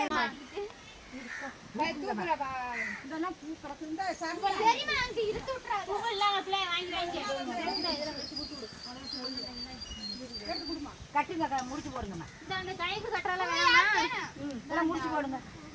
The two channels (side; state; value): both; identical; correlation 1.00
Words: கட்டுங்க, முடிச்சு போடுங்க. கைக்கு கட்டுறால வேணாமா? முடிச்சு போடுங்க.